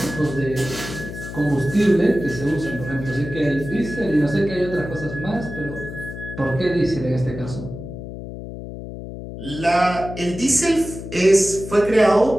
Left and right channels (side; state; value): left; noise; hum, 10 dB below the sound